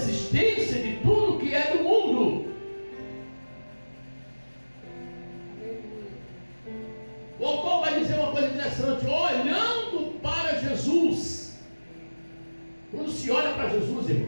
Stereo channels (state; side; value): inverted; both; correlation -1.00